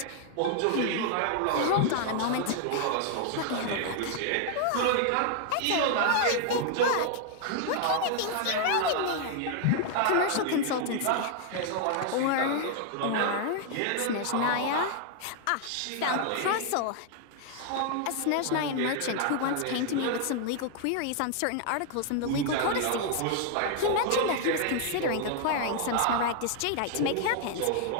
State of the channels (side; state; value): both; different; correlation 0.00